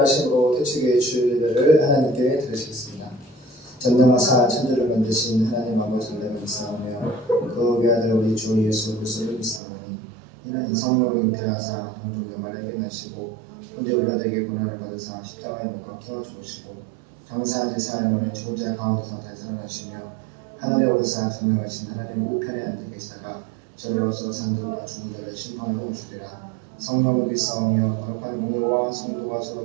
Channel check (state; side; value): drops out; left; at 9.6 s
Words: 태초교회 주일 예배를 하나님께 드리시겠습니다. 전능하사 천지를 만드신 하나님 아버지를 믿사오며 그 외아들 우리 주 예수 그리스도를 믿사오니 이는 성령으로 잉태하사 동정연말에 깨나시고 현재 우리들에게 고난을 받으사 십자가에 못 박혀 죽으시고 장사한 지 사흘 만에 죽은 자 가운데서 다시 살아나시며 하늘에 오르사 전능하신 하나님 우편에 앉아 계시다가 저리로서 산들과 죽은 자를 심판하러 오시리라. 성령을 믿사오며 거룩한 공로와 성도가